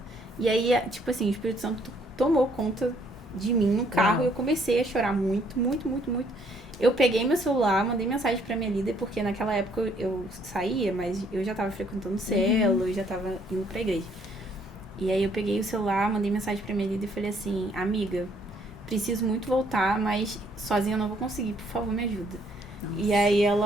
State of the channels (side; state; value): both; normal; correlation 0.66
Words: E aí, tipo assim, o Espírito Santo tomou conta de mim no carro e eu comecei a chorar muito, muito, muito, muito. Eu peguei meu celular, mandei mensagem pra minha líder, porque naquela época eu saía, mas eu já tava frequentando célula, eu já tava indo pra igreja. E aí eu peguei o celular, mandei mensagem pra minha líder e falei assim, amiga, preciso muito voltar, mas sozinha eu não vou conseguir, por favor, me ajuda. Nossa. E aí